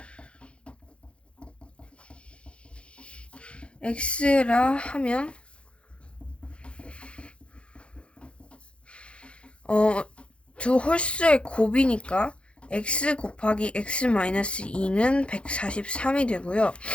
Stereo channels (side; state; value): right; late; 0.058 ms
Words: x라 하면 두 홀수의 곱이니까 x 곱하기 x-2는 143이 되고요.